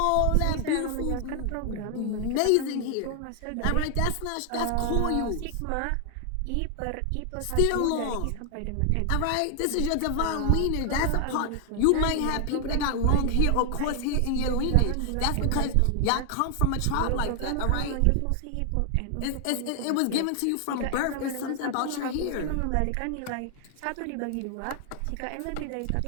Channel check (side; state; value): both; different; correlation 0.00